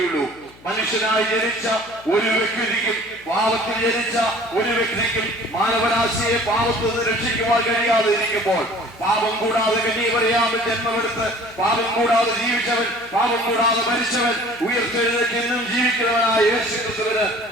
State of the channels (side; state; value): left; noise; hum, 24 dB below the sound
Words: മനുഷ്യനായി ജനിച്ച ഒരു വ്യക്തിക്കും പാപത്തിൽ ജനിച്ച ഒരു വ്യക്തിക്കും മാനവരാശിയെ പാപത്തിൽ നിന്ന് രക്ഷിക്കുവാൻ കഴിയാതെ ഇരിക്കുമ്പോൾ, പാപം കൂടാതെ കന്യകമറിയാമിൽ ജന്മമെടുത്ത് പാപം കൂടാതെ ജീവിച്ചവൻ, പാപം കൂടാതെ മരിച്ചവൻ, ഉയർത്തെഴുന്നേറ്റ് എന്നും ജീവിക്കുന്നവനായ യേശുക്രിസ്തുവിന്